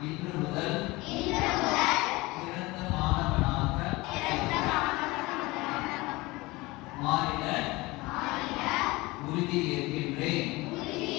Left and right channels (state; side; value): quieter; right; 21.9 dB